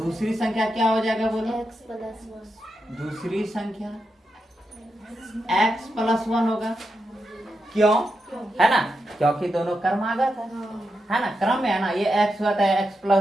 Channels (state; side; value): normal; both; correlation 0.86